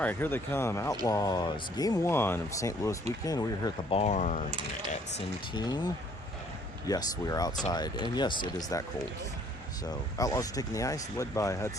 here they come, Outlaws. Game 1 of St. Louis weekend. We're here at the barn at Centene. Yes, we are outside, and yes, it is that cold. So, Outlaws are taking the ice, led by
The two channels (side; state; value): both; normal; correlation 0.60